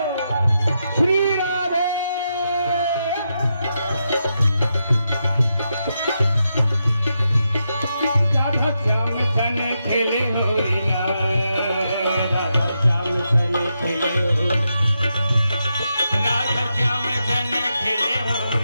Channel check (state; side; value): inverted; both; correlation -0.85